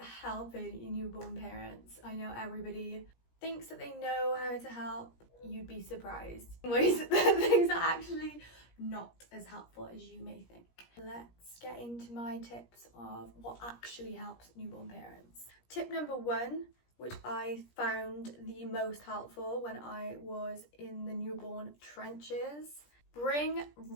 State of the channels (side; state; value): right; late; 17 ms